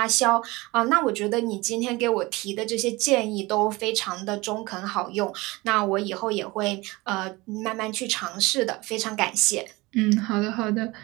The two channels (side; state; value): left; quieter; 22.4 dB